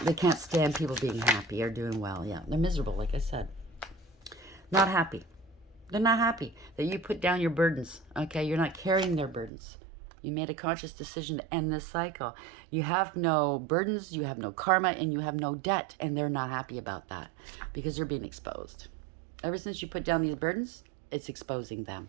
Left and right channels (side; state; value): left; drops out; at 9.5 s